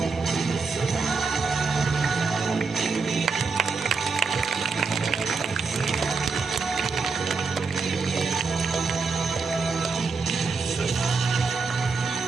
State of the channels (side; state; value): left; quieter; 4.5 dB